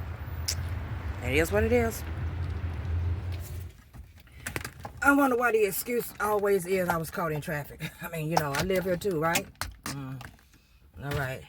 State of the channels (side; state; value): both; identical; correlation 1.00